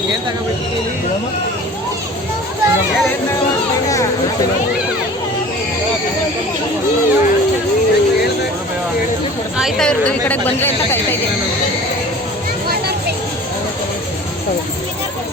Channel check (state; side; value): normal; both; correlation 0.42